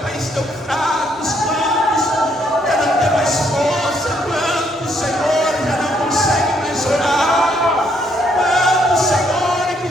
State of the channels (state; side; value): normal; both; correlation 0.71